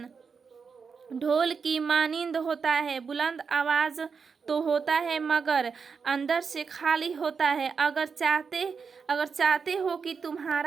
ढोल की मानिंद होता है, बुलंद आवाज़ तो होता है मगर अंदर से खाली होता है। अगर चाहते हो कि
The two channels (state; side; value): quieter; left; 5.6 dB